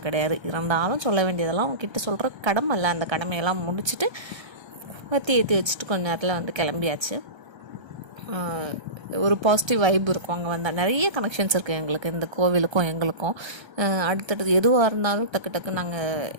கிடையாது. இருந்தாலும் சொல்ல வேண்டியதெல்லாம் அவங்கக்கிட்ட சொல்கிற கடமை இல்லை. அந்த கடமையெல்லாம் முடிச்சுட்டு ஏற்றி வச்சுட்டு கொஞ்ச நேரத்தில் வந்து கிளம்பியாச்சு. ஒரு பாசிட்டிவ் வைப் இருக்கும் அங்கே வந்தால். நிறைய கனெக்ஷன்ஸ் இருக்குது எங்களுக்கு, இந்த கோவிலுக்கும் எங்களுக்கும். அடுத்தடுத்து எதுவாக இருந்தாலும் டக்கு நாங்கள்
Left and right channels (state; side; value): late; left; 1.3 ms